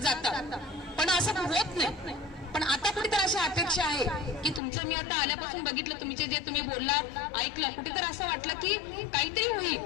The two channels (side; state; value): right; drops out; at 4.6 s